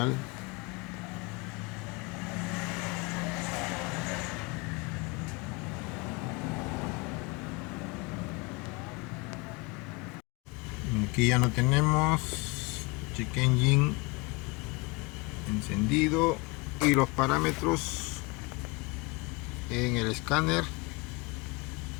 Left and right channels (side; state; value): right; quieter; 26.3 dB